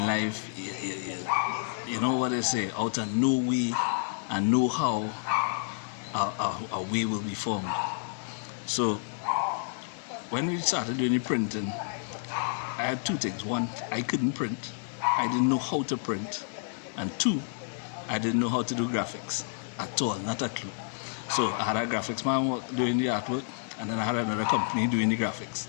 life, you know what they say, out of no way and know how a way will be formed. So when we started doing the printing, I had two things. One, I couldn't print. I didn't know how to print. And two, I didn't know how to do graphics at all, not a clue. So I had a graphics man doing the artwork, and then I had another company doing the graphics,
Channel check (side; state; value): right; silent; 56 dB below the other